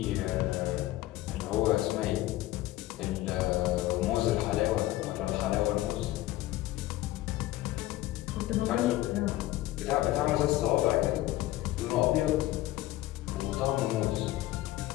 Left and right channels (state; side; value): quieter; right; 16.2 dB